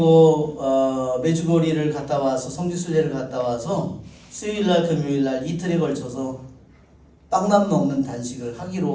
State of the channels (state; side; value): identical; both; correlation 1.00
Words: 메주거리를 갔다 와서 성지순례를 갔다 와서 수요일날 금요일날 이틀에 걸쳐서 빵만 먹는 단식을